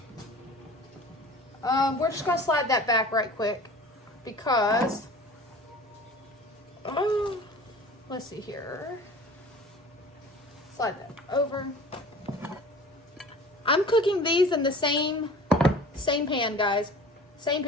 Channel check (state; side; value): normal; both; correlation 0.42